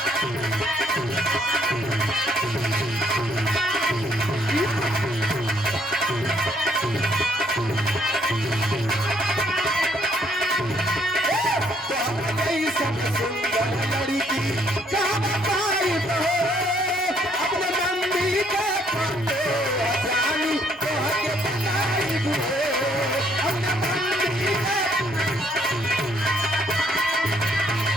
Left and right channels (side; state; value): both; normal; correlation 0.67